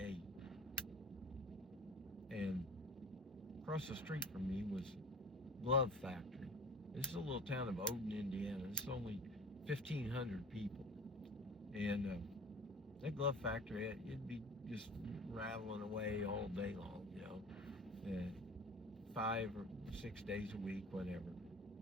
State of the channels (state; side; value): normal; both; correlation 0.41